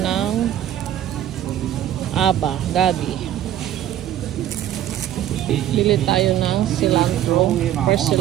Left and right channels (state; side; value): quieter; left; 11.8 dB